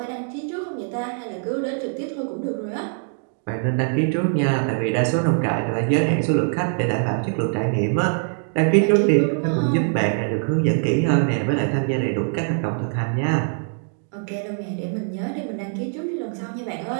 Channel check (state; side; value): silent; left; 61 dB below the other